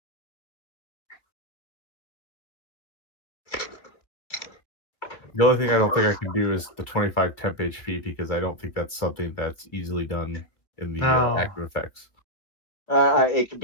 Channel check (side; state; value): right; late; 2.4 ms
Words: The only thing I don't think I can do is the 25 temp HP because I don't think that's something that's easily done in the No. active effects. It could